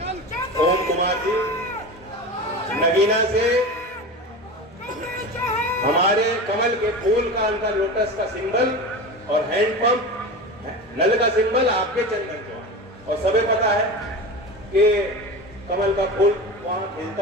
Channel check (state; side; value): normal; both; correlation 0.28